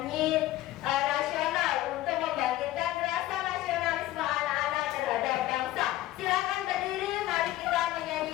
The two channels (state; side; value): quieter; right; 15.4 dB